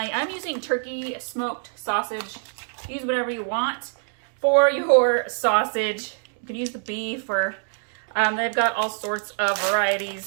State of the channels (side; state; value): left; silent; 62 dB below the other